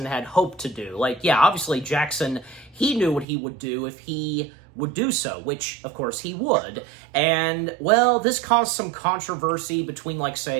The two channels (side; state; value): left; drops out; at 3.2 s